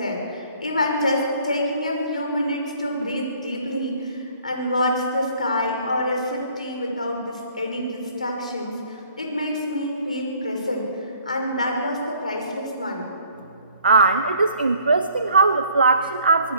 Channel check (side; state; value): both; inverted; correlation -0.59